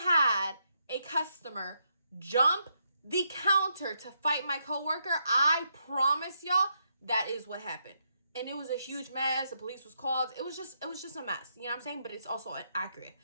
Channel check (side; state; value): both; inverted; correlation -0.79